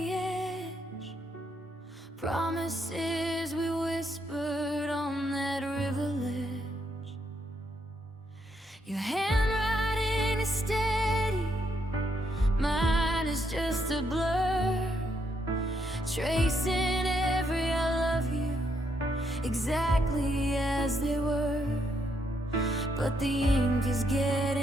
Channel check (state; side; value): normal; both; correlation 0.76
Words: edge, promises we whispered on that river ledge. Your handwriting is steady, mine is just a blur, tracing every I love you exactly as they were. But the ink is